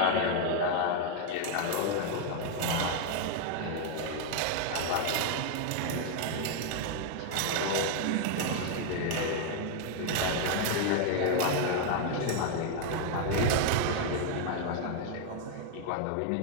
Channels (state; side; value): different; both; correlation 0.00